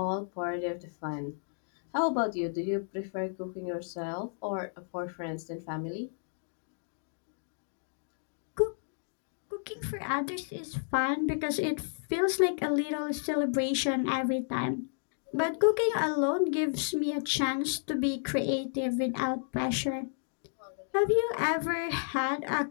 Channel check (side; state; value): right; silent; digital silence